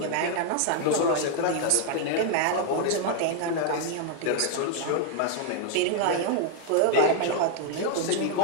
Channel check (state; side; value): different; both; correlation 0.00